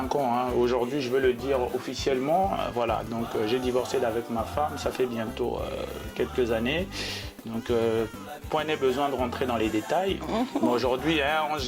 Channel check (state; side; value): identical; both; correlation 1.00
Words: ans. Hein. Aujourd'hui, je veux le dire officiellement. Voilà, donc j'ai divorcé d'avec ma femme, ça fait bientôt quelques années. Donc, point n'est besoin de rentrer dans les détails. Mais aujourd'hui, Ange